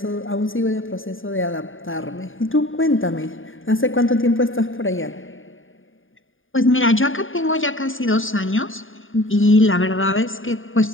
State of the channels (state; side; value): late; right; 0.58 ms